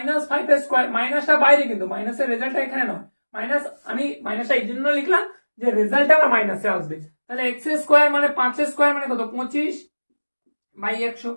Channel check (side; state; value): both; inverted; correlation -1.00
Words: এর স্কয়ার, মাইনাসটা বাইরে কিন্তু মাইনাসের রেজাল্টটা এখানে নয়, মাইনাস আমি মাইনাসটা এই জন্য লিখলাম যে রেজাল্ট আমার মাইনাসে আসবে। তাহলে এক্স স্কোয়ার মানে 5 স্কোয়ার মানে কত 25/100,